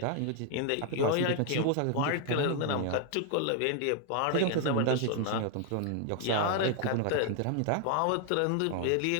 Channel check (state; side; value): different; both; correlation 0.00